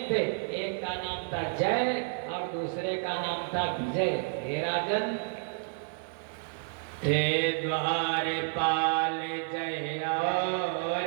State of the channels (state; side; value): silent; left; digital silence